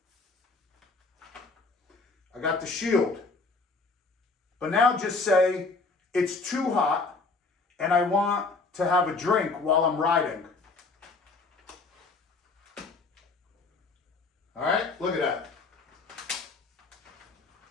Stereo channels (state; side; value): quieter; right; 3.9 dB